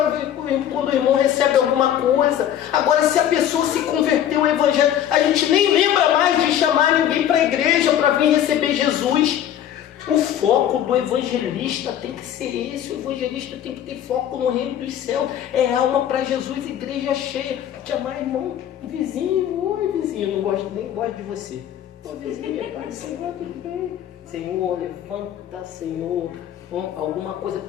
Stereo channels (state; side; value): quieter; right; 10.6 dB